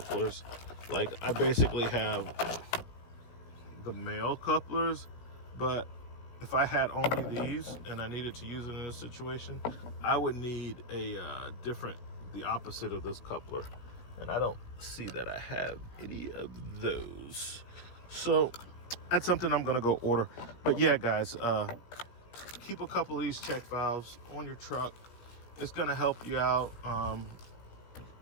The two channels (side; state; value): right; late; 17 ms